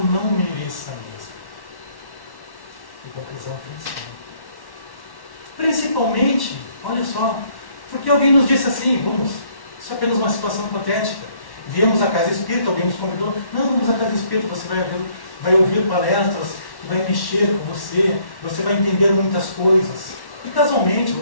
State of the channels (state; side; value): late; right; 1.1 ms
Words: mereça mesmo. Que conclusão tem isso? Principalmente, olha só, porque alguém nos disse assim, isso é apenas uma situação hipotética. Viemos à casa espírita, alguém nos convidou. Não, vamos à casa espírita, você vai ouvir palestras que vai mexer com você, você vai entender muitas coisas. E casualmente,